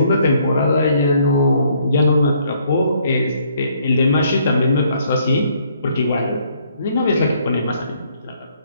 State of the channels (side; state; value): both; inverted; correlation -0.66